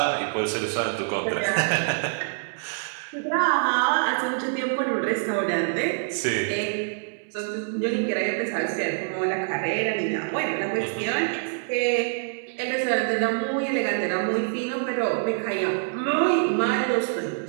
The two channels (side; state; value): left; silent; 61 dB below the other